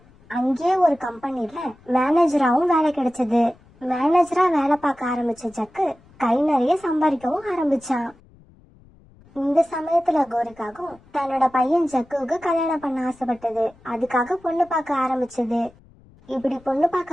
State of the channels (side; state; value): left; noise; rumble, 27 dB below the sound